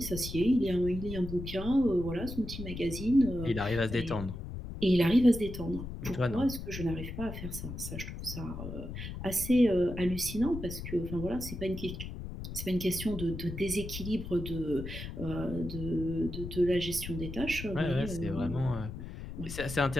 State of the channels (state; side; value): noise; left; rumble, 8 dB below the sound